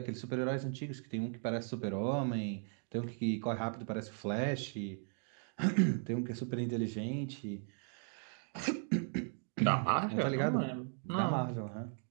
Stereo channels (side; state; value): left; silent; 53 dB below the other